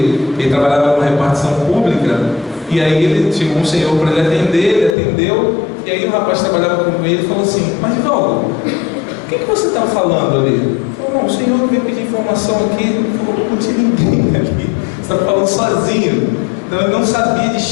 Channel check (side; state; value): right; drops out; at 5.0 s